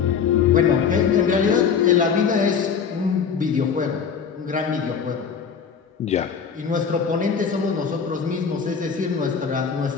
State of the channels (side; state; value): right; quieter; 6.6 dB